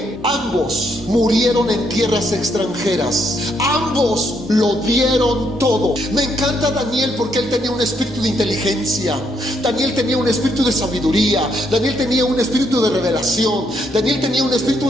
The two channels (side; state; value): both; normal; correlation 0.74